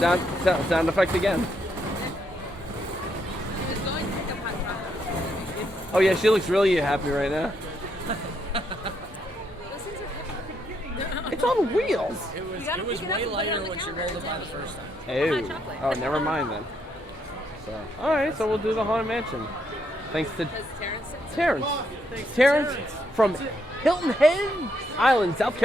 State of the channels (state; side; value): normal; both; correlation 0.76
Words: Sound effect again. He was going to pick up hot chocolate. Oh yeah, she looks really happy right now. Those things are heavy. It's on wheels. It was way lighter when she rolled it by the first time. Oh, chocolate. oh, never mind then. So, all right, so we'll do the Haunted Mansion. Thanks to Does Terrence sit? Terrence. Terrence from Hilton Head Island, South